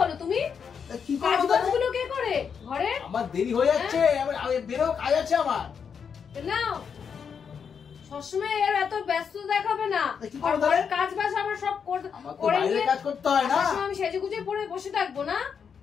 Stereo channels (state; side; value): quieter; right; 6.8 dB